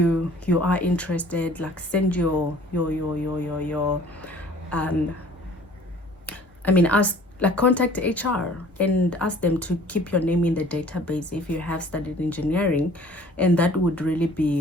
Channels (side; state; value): both; normal; correlation 0.51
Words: are interested, like send your I mean, ask, like, contact HR and ask them to keep your name in the database if you have studied engineering, and that would really